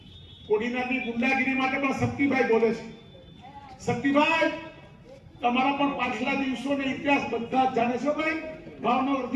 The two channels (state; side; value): identical; both; correlation 1.00